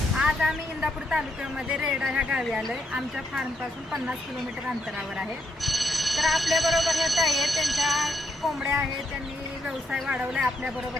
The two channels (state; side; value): normal; both; correlation 0.78